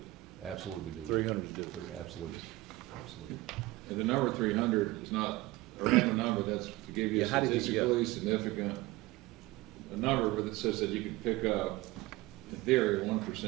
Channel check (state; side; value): quieter; left; 19.7 dB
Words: Absolutely doable. 300 is doable. Absolutely, absolutely. And the number 300 is not a random number, that's to give you a Yeah, how did you- yeah. statistically significant, a number that says that you can pick up, in theory,